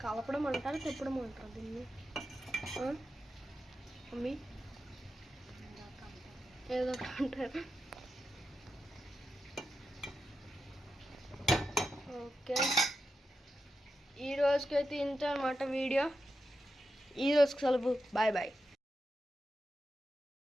కలపడం అంటారు, తిప్పడం అంటారు దీన్ని. మమ్మీ ఏదో అంటారు. ఓకే, ఈ రోజుకైతే ఇంత అన్నమాట వీడియో. ఈ రోజుకి సెలవు. బాయ్.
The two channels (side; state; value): both; normal; correlation 0.89